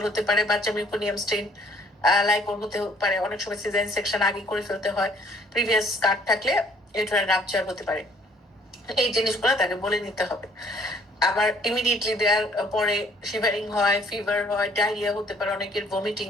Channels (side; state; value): both; normal; correlation 0.60